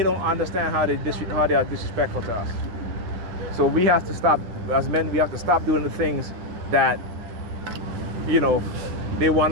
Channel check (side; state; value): left; late; 10 ms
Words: understand how they are disrespectful to us. So we have to stop, as men, we have to stop doing the things that, they want